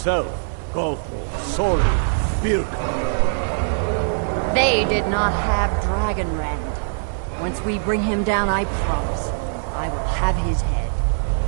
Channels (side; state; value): left; silent; digital silence